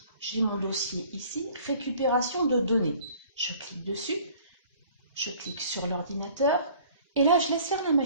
J'ai mon dossier ici, récupération de données. Je clique dessus, je clique sur l'ordinateur et là, je laisse faire la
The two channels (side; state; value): both; inverted; correlation -0.53